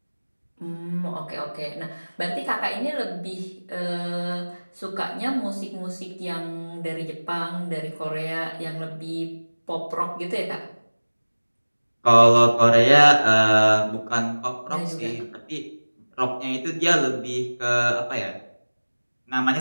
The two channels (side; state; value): both; inverted; correlation -1.00